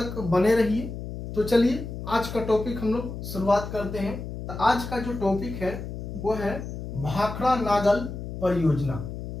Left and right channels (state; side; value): noise; left; hum, 8 dB below the sound